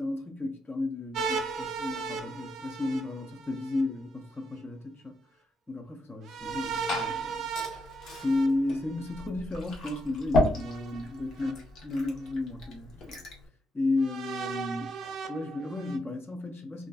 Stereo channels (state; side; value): normal; both; correlation 0.79